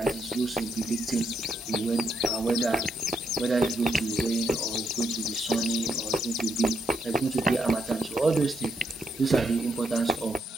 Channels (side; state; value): both; normal; correlation 0.77